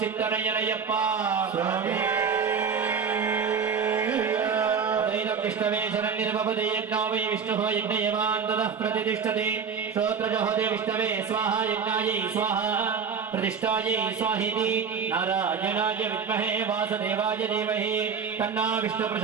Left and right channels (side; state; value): left; quieter; 6.3 dB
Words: विष्णवे शरण्यर्भवते यज्ञो वै विष्णुः यज्ञयवान् ततः प्रतिष्ठते श्रोत्रजहोदे विष्णवे स्वाहा यज्ञायै स्वाहा प्रतिष्ठायै स्वाहेति नारायणाय विद्महे वासुदेवाय धीमहि तन्नो विष्णुः